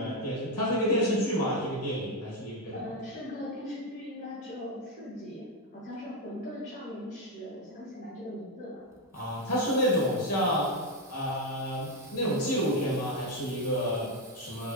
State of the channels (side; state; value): both; normal; correlation 0.07